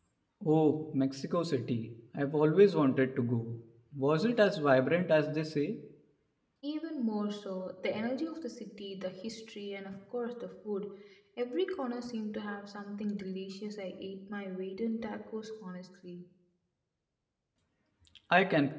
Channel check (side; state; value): both; identical; correlation 1.00